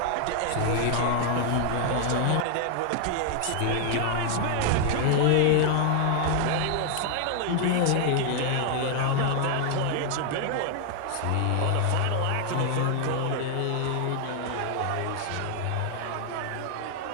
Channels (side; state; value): both; different; correlation 0.00